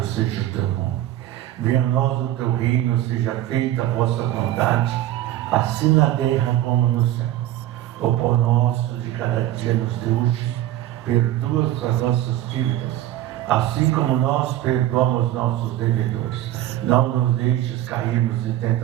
seja o teu nome. Venha a nós o teu reino, seja feita a vossa vontade, assim na terra como no céu. O pão nosso de cada dia nos dê hoje, perdoa as nossas dívidas, assim como nós perdoamos nossos devedores. Não nos deixes cairmos em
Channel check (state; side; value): quieter; left; 13.7 dB